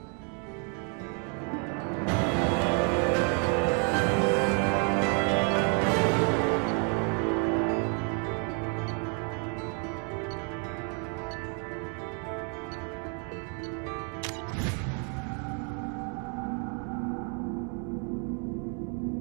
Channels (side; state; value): left; quieter; 38.6 dB